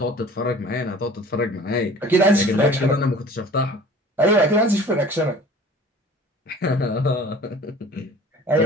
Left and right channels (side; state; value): both; normal; correlation 0.45